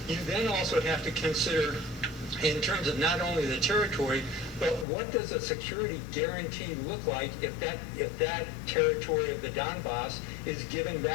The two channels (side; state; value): right; drops out; at 4.9 s